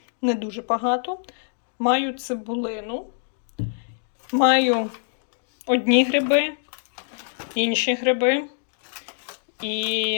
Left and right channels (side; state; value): right; silent; digital silence